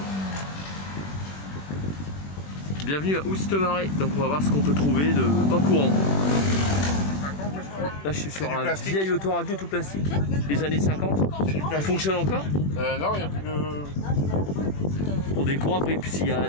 Bienvenue à Oustemaré. Donc on va voir ce qu'on peut trouver de pas courant. Là je suis sur un vieil autoradio tout plastique des années 50. Il fonctionne encore? Non, il n'y a plus de... Pour des courants, après, s'il y a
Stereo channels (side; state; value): right; late; 21 ms